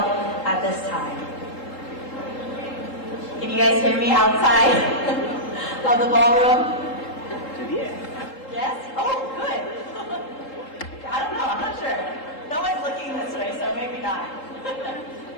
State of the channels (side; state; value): right; late; 3.8 ms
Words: at this time. Can you guys hear me outside of the ballroom? Yes? Oh, good. I don't know, I'm not sure. No one's looking this way, so maybe not.